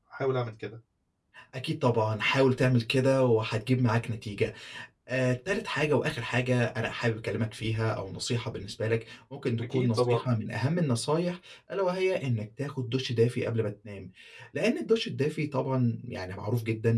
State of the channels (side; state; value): both; identical; correlation 1.00